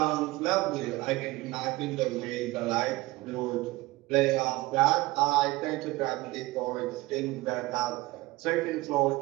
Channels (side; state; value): left; quieter; 19.9 dB